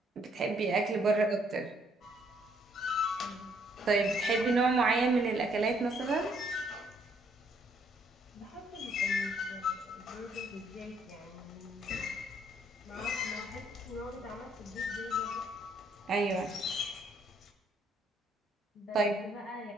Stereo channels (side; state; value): both; normal; correlation 0.68